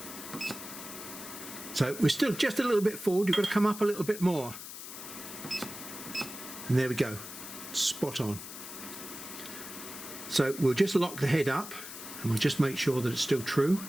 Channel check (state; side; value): noise; left; hiss, 11 dB below the sound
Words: So we're still just a little bit forward. You've got to come up a little bit more. And there we go, spot on. So we'll just lock the head up and we'll just make sure that it's still true.